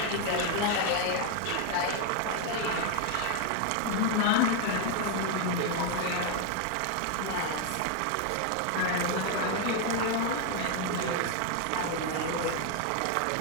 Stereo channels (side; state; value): both; different; correlation 0.01